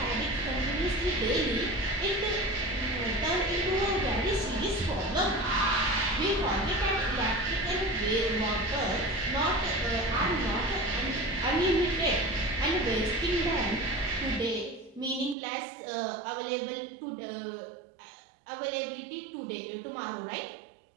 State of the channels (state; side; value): drops out; left; at 15.4 s